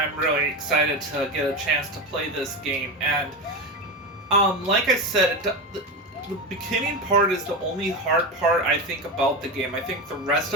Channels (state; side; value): normal; both; correlation 0.18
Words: really excited to get a chance to play this game. And like I said, the beginning part is the only hard part I think about the game. I think the rest